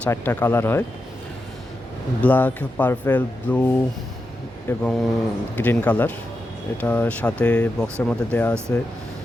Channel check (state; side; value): normal; both; correlation 0.88